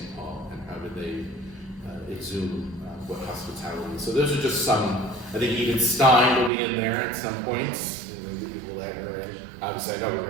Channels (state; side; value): drops out; left; at 6.5 s